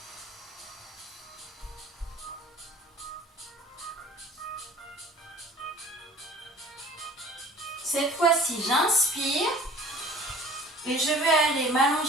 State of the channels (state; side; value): normal; both; correlation 0.46